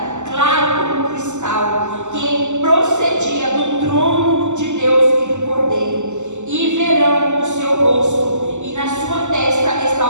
claro como cristal, que procedia do trono de Deus e do Cordeiro. E verão o seu rosto, e na sua testa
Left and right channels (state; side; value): late; left; 0.84 ms